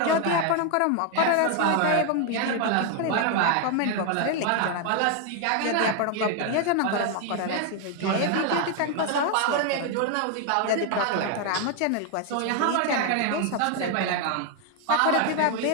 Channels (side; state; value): both; different; correlation 0.01